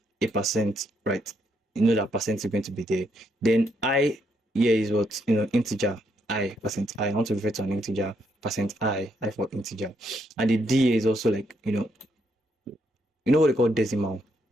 a %, right? That % is going to be there. Then I here is what integer, %I. I want to refer to an integer, %I for integer. And the D is also like, you know what they call decimal,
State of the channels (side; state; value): both; normal; correlation 0.76